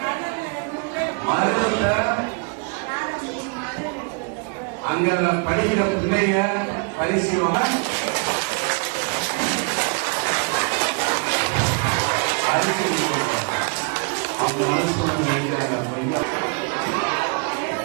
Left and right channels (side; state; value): left; quieter; 36.1 dB